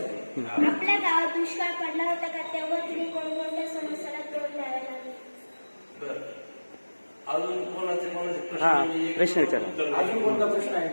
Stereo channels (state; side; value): inverted; both; correlation -1.00